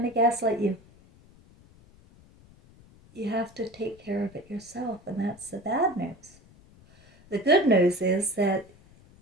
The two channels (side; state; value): left; noise; rumble, 26 dB below the sound